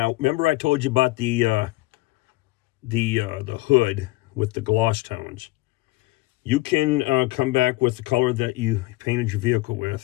remember I told you about the hood with the gloss tones. You can come back with the color that you painted your vehicle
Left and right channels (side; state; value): right; quieter; 20.8 dB